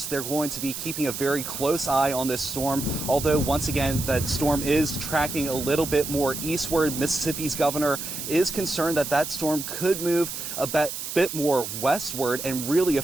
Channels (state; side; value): noise; right; hiss, 6 dB below the sound